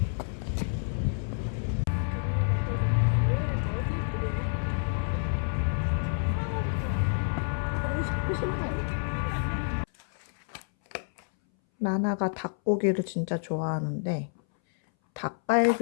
나나가 닭고기를 진짜 좋아하는데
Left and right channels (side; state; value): right; silent; 59 dB below the other